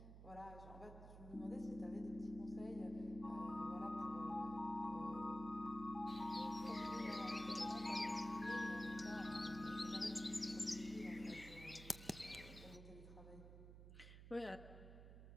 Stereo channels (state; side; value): noise; right; hum, 12 dB below the sound